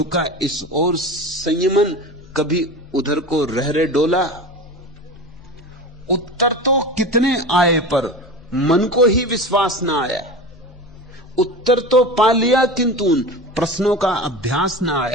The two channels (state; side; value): normal; both; correlation 0.30